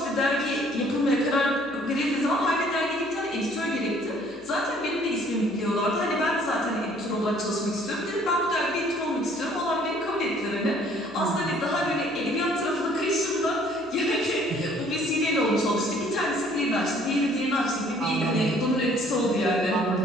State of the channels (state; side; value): noise; left; hum, 28 dB below the sound